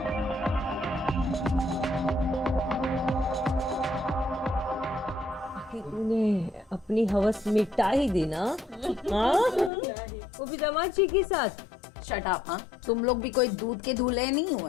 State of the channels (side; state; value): right; drops out; at 9.7 s